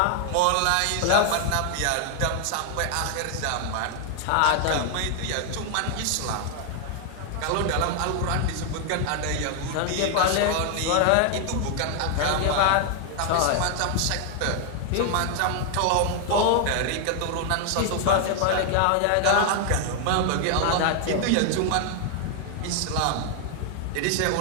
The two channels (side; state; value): both; different; correlation 0.00